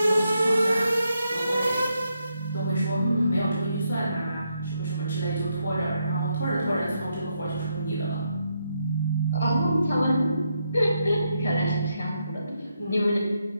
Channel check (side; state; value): both; inverted; correlation -0.80